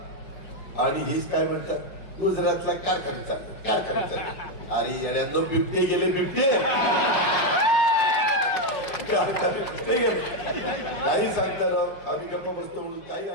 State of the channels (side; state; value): right; late; 5.6 ms